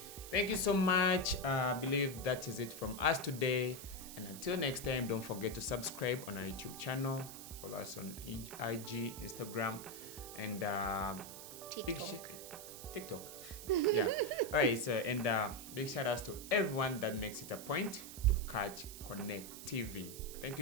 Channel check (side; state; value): right; noise; hiss, 12 dB below the sound